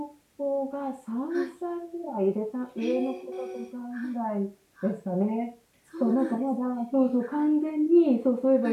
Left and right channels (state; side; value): identical; both; correlation 1.00